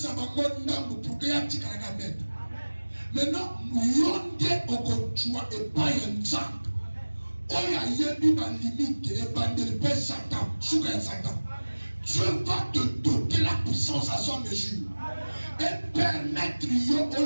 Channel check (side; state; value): both; inverted; correlation -1.00